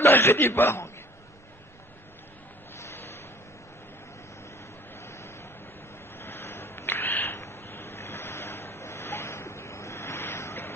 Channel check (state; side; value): normal; both; correlation 0.51